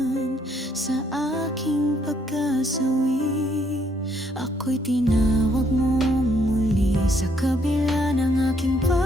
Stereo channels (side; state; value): both; normal; correlation 0.69